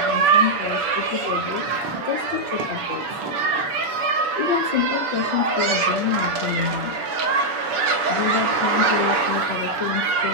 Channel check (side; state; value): left; late; 7.0 ms